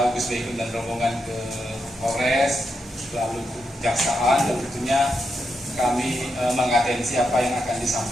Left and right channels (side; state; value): both; normal; correlation 0.84